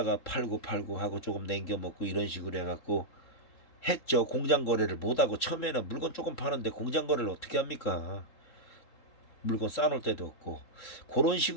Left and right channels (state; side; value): late; right; 3.7 ms